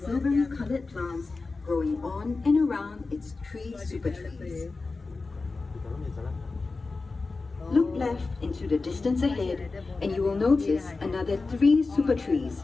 colored plants growing on and around its three super trees. Look left into the distance ahead and you will notice another 3 super trees.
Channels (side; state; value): right; quieter; 3.8 dB